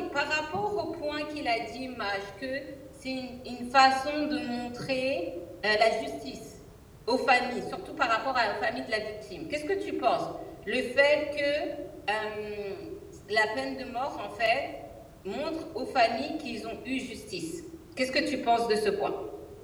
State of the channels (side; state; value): both; identical; correlation 1.00